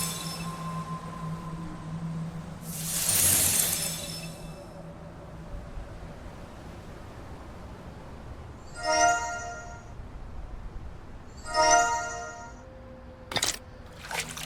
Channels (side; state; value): both; identical; correlation 1.00